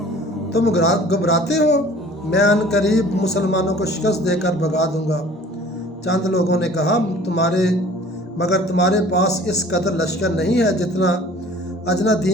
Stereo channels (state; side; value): normal; both; correlation 0.49